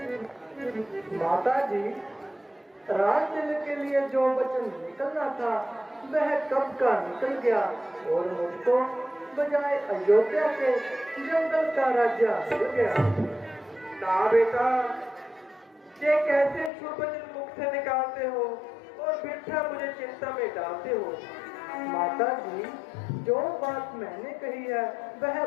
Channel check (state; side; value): drops out; right; at 16.7 s